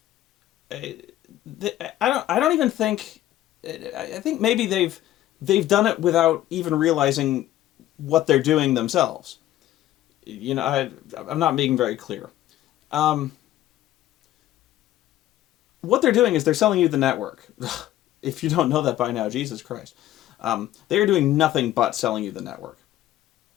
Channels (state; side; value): quieter; right; 13.8 dB